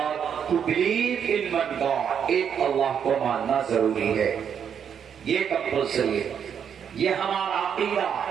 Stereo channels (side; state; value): left; quieter; 7.9 dB